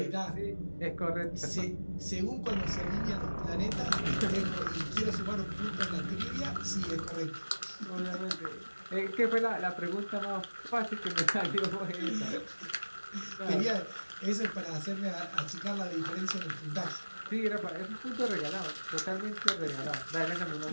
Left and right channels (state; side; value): inverted; both; correlation -1.00